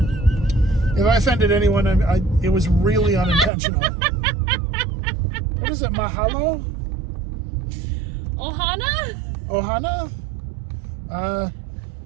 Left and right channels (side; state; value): left; drops out; at 3.5 s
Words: If I offended anyone, it was really unintentional. What is it? Mahalo? Ohana? Ohana?